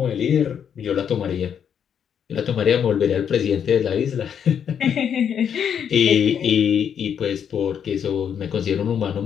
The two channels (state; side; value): quieter; right; 8.1 dB